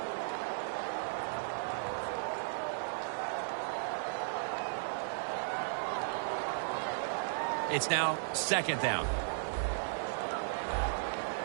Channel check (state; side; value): silent; left; 54 dB below the other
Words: It's now second down.